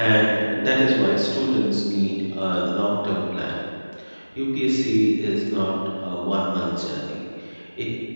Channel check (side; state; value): both; inverted; correlation -1.00